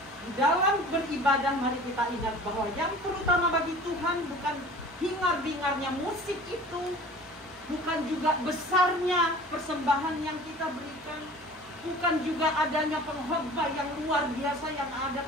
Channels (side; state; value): both; normal; correlation 0.44